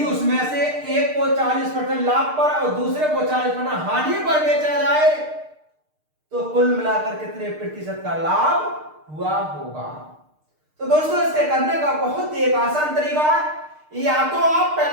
उसमें से एक को 40% लाभ पर और दूसरे को 40% हानि पर बेचा जाए तो कुल मिलाकर कितने प्रतिशत का लाभ हुआ होगा? तो दोस्तों इसके करने का बहुत ही एक आसान तरीका है, या तो आप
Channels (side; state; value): left; late; 6.6 ms